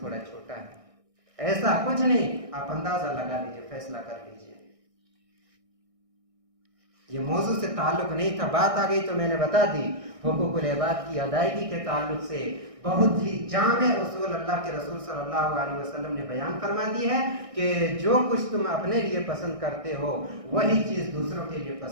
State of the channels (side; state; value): left; late; 1.6 ms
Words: छोटा है, ऐसा कुछ नहीं। आप अंदाजा लगा लीजिए, फैसला कर लीजिए। ये मौजू से ताल्लुक नहीं था, बात आ गई तो मैंने बता दी। हुकूकुल इबाद की अदायगी के ताल्लुक से बहुत ही जामे उसूल अल्लाह के रसूल सल्लल्लाहु अलैहि वसल्लम ने बयान फरमा दी है कि जो कुछ तुम अपने लिए पसंद करते हो वही चीज़ दूसरों के लिए